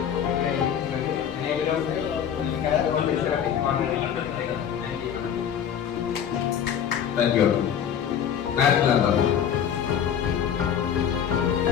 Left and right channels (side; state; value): right; quieter; 8.7 dB